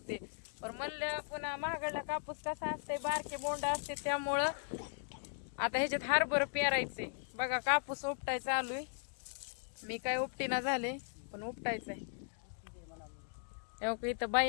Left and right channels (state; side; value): silent; right; digital silence